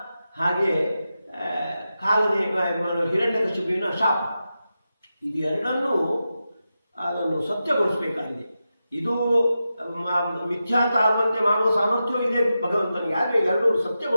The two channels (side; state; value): both; inverted; correlation -0.90